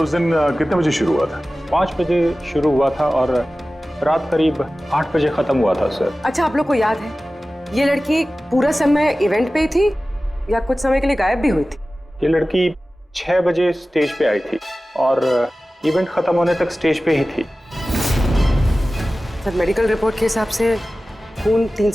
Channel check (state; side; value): normal; both; correlation 0.96